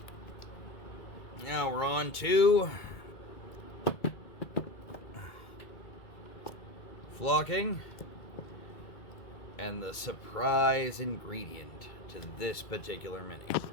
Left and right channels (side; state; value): right; late; 1.9 ms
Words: now we're on to flocking and the surprise ingredient to this particular mini,